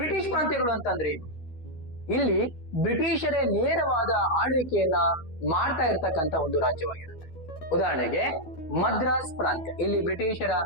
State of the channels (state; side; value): late; right; 12 ms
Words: ಪ್ರಾಂತ್ಯಗಳು ಅಂತಂದ್ರೆ ಏನು? ಇಲ್ಲಿ ಬ್ರಿಟಿಷರೇ ನೇರವಾದ ಆಳ್ವಿಕೆಯನ್ನ ಮಾಡ್ತಾ ಇರ್ತಕ್ಕಂಥ ಒಂದು ರಾಜ್ಯವಾಗಿರುತ್ತೆ. ಉದಾಹರಣೆಗೆ ಮದ್ರಾಸ್ ಪ್ರಾಂತ್ಯ, ಇಲ್ಲಿ ಬ್ರಿಟಿಷರ